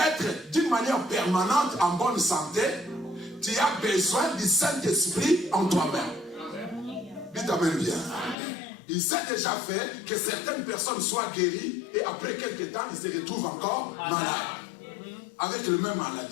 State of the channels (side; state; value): right; drops out; at 8.3 s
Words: d'une manière permanente en bonne santé, tu as besoin du Saint-Esprit en toi-même. Dites amen bien. Il s'est déjà fait que certaines personnes soient guéries et après quelques temps, ils se retrouvent encore malades. Avec la même